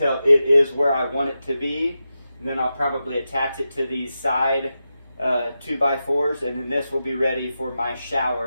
it is where I want it to be. And then I'll probably attach it to these side 2x4s, and then this will be ready for my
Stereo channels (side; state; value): both; inverted; correlation -0.90